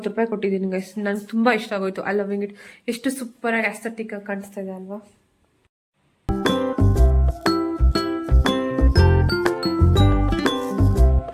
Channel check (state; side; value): identical; both; correlation 1.00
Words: ರೂಪಾಯಿ ಕೊಟ್ಟಿದ್ದೀನಿ ಗೈಸ್. ನಂಗೆ ತುಂಬಾ ಇಷ್ಟ ಆಗೋಯ್ತು. I loving it. ಎಷ್ಟು ಸೂಪರ್ ಆಗಿ ಅಸ್ಥೆಟಿಕ್ ಆಗಿ ಕಾಣಿಸ್ತಾ ಇದೆ ಅಲ್ವಾ?